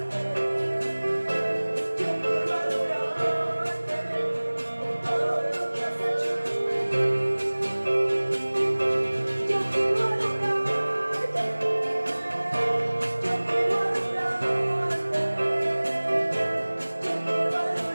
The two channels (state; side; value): inverted; both; correlation -1.00